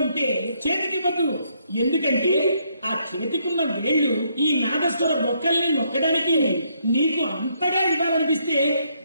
ఉంటే చేతికి ఇవ్వద్దు. ఎందుకంటే ఆ చేతికున్న వేళ్లు ఈ నాగస్వర బొక్కల్ని నొక్కడానికి నీకు అంతగా ఇవ్వాలనిపిస్తే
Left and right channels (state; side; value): inverted; both; correlation -0.72